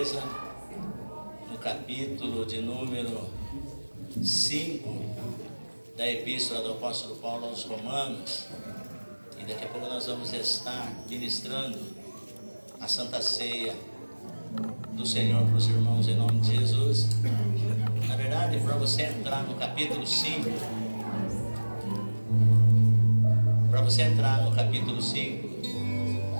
no capítulo de número 5 da Epístola do Apóstolo Paulo aos Romanos. E daqui a pouco nós vamos estar ministrando a Santa Ceia do Senhor para os irmãos em nome de Jesus. Na verdade, para você entrar no capítulo 5,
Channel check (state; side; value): inverted; both; correlation -1.00